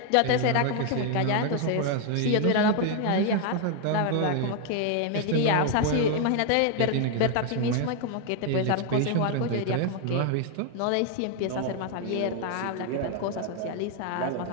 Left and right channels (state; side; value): different; both; correlation 0.00